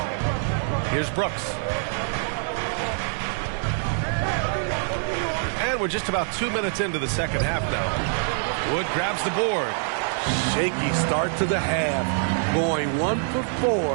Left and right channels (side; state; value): left; silent; 62 dB below the other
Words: Here's Brooks. And we're just about 2 minutes into the second half now. Wood grabs the board. Shaky start to the half. Going 1 for